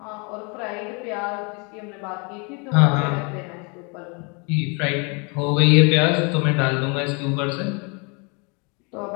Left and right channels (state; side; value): quieter; right; 32.7 dB